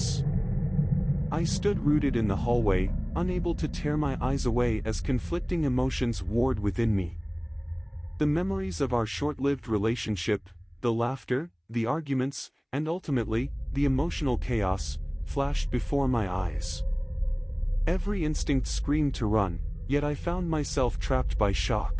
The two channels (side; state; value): both; identical; correlation 1.00